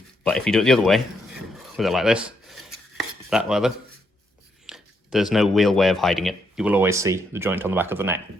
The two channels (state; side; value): normal; both; correlation 0.77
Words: But if you do it the other way, with it like this, that rather, there's no real way of hiding it. You will always see the joint on the back of the neck.